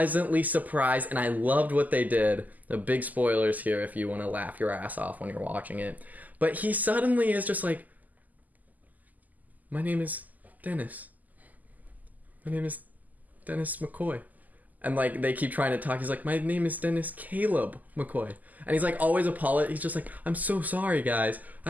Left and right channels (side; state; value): left; late; 0.081 ms